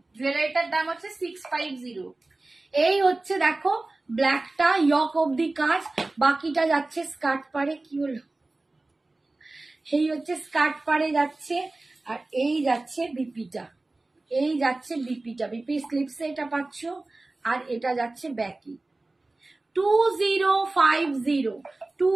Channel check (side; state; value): left; quieter; 3.1 dB